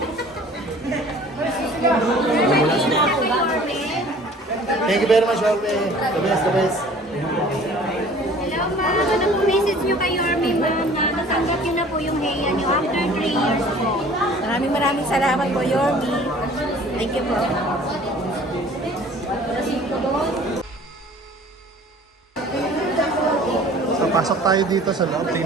Thank you very much, Jorme. The best, the best. Hello ma'am, ano po message niyo kay Yorme ma'am na natanggap niyo na po yung heya niyo after 3 years po? Maraming salamat po, Yorme. Thank you po. So, pasok tayo dito sa loob.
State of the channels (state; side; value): normal; both; correlation 0.49